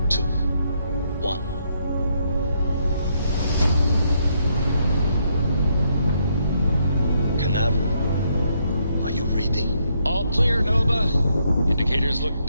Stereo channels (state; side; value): inverted; both; correlation -0.75